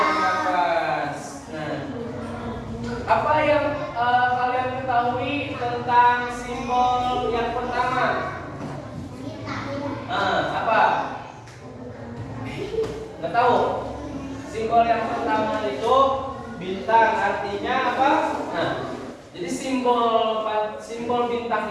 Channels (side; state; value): both; identical; correlation 1.00